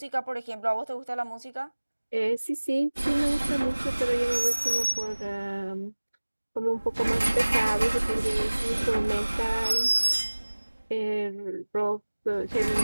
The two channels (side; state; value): both; inverted; correlation -1.00